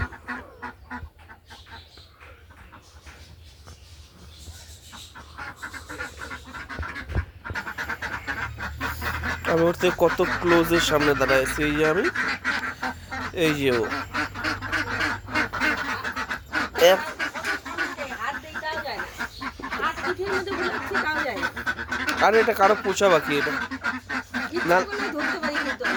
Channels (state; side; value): identical; both; correlation 1.00